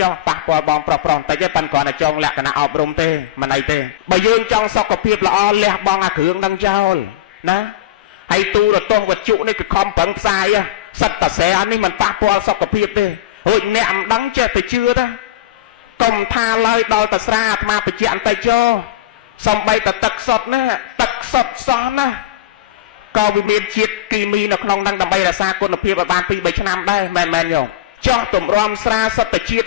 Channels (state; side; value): quieter; right; 14.0 dB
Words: ចុះប៉ះពាល់បងប្រុសបន្តិចទេប៉ុន្តែគ្រាន់តែចង់លក្ខណៈអប់រំទេមិនអីទេបើយើងចង់សុខភាពល្អលះបង់អាគ្រឿងនឹងចោលណាហើយទូរទស្សន៍វត្ថុនេះគឺខំប្រឹងផ្សាយសិតតាស្រែនេះមិនប៉ះពាល់សុខភាពទេរួចអ្នកមិនដឹងចេះតែជឿទេកុំថាឡើយដល់តាស្រាអាត្មាបញ្ជាក់បន្តិចចុះសំបីតែទឹកសុទ្ធណាទឹកសុទ្ធសោះណាក៏វាមានជាតិគីមីនៅក្នុងហ្នឹងដើម្បីរក្សាគុណភាពឲ្យបាន 2-3 ឆ្នាំដែរមែនយោចោះទម្រាំស្រាសុទ្ធតែជាតិ